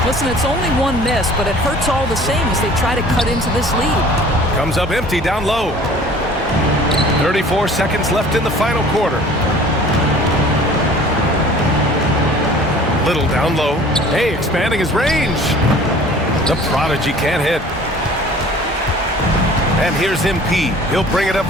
Listen, it's only one miss, but it hurts all the same as they try to cut into this lead. Comes up empty down low. 34 seconds left in the final quarter. Little down low. Hey, expanding his range. The Prodigy can't hit. And here's MP. He'll bring it up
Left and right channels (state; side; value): normal; both; correlation 0.48